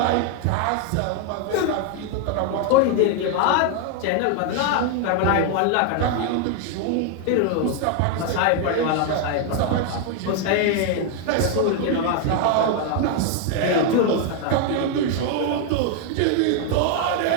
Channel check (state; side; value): different; both; correlation 0.00